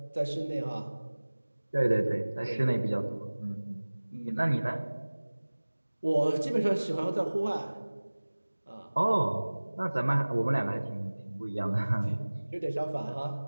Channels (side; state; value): both; inverted; correlation -1.00